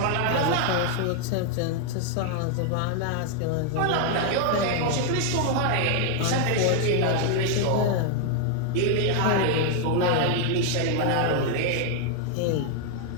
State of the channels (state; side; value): different; both; correlation 0.00